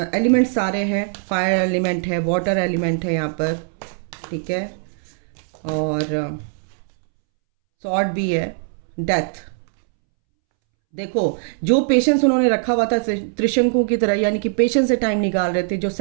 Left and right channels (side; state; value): left; silent; 65 dB below the other